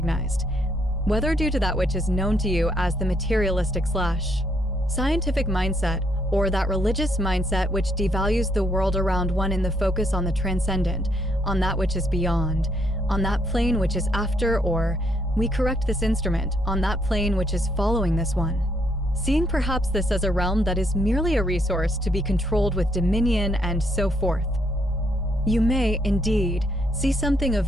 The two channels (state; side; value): normal; both; correlation 0.73